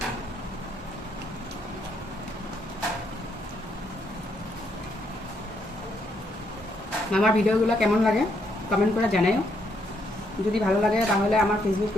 আমার ভিডিওগুলো কেমন লাগে কমেন্ট করে জানাও। যদি ভালো লাগে তাহলে আমার ফেসবুক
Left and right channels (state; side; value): normal; both; correlation 0.74